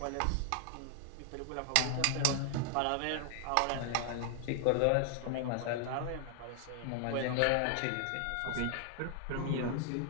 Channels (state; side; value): different; both; correlation 0.00